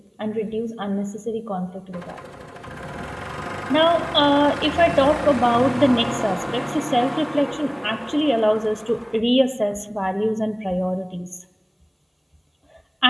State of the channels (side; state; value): both; identical; correlation 1.00